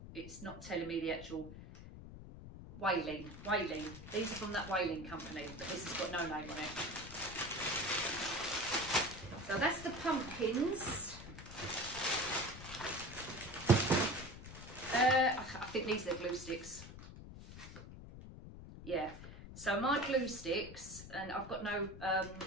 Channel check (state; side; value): noise; left; rumble, 13 dB below the sound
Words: it's not telling me the actual. Whaling. These are from that whaling company, but this has got no name on it. So that's the pumpkins. I think these are the glue sticks. Yeah. So my glue sticks, and I've got no